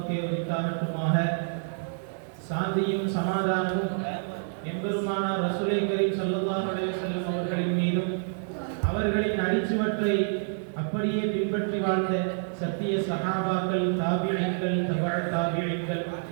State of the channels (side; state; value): left; silent; digital silence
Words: உரித்தாகட்டுமாக. சாந்தியும் சமாதானமும் எம்பெருமானார் ரசூலை கரீம் ஸல்லல்லாஹு அலைஹி வஸல்லம் அவர்களின் மீதும் அவர்களின் அடிச்சுவற்றை அப்படியே பின்பற்றி வாழ்ந்த சத்திய சஹாபாக்கள், தாபிஈன்கள், தபஅ தாபிஈன்கள்,